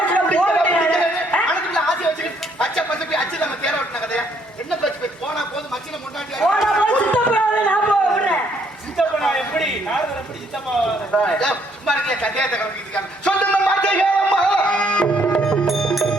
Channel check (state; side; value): normal; both; correlation 0.68